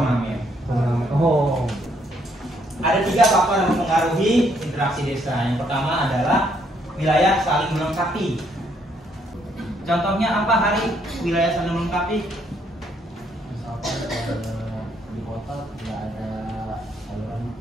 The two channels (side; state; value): both; normal; correlation 0.71